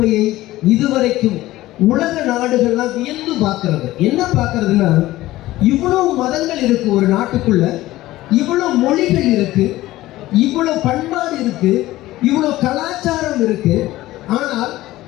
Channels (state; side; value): quieter; right; 16.6 dB